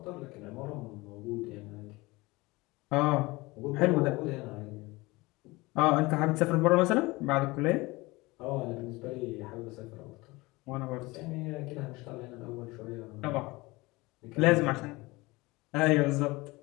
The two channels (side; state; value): right; quieter; 22.4 dB